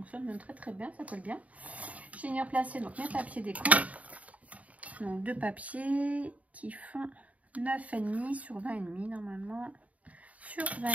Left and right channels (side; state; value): left; late; 0.069 ms